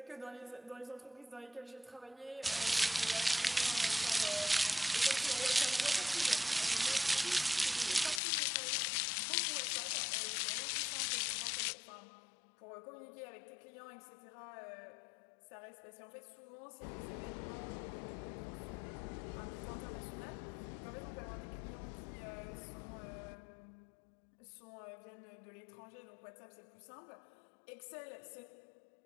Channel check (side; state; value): right; drops out; at 8.2 s